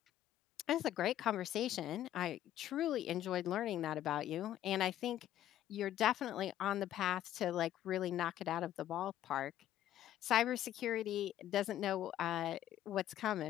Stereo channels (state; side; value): quieter; right; 12.3 dB